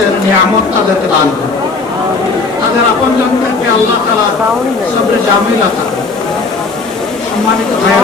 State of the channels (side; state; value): right; quieter; 4.0 dB